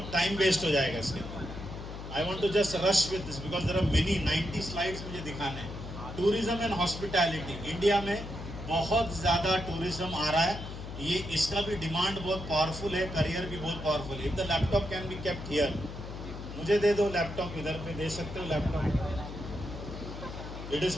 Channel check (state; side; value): noise; left; hum, 10 dB below the sound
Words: टाइम वेस्ट हो जाएगा इसके अंदर। I want to just rush with this because there are many 90 slides मुझे दिखाने हैं। टूरिज्म एंड हॉस्पिटैलिटी, इंडिया में बहुत ज़्यादा टूरिज्म आ रहा है। ये इसका भी डिमांड बहुत पावरफुल है, करियर भी बहुत पावरफुल है। If the laptop can be kept here, मुझे दे दो लैपटॉप, इधर पे दे सकते हो लैपटॉप। इट इज़,